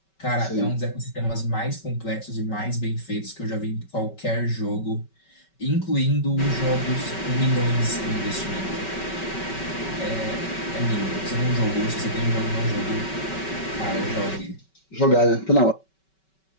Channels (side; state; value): right; late; 5.2 ms